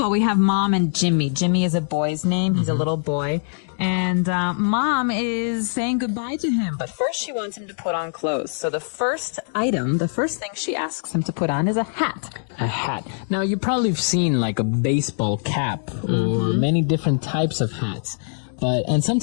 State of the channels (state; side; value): silent; right; digital silence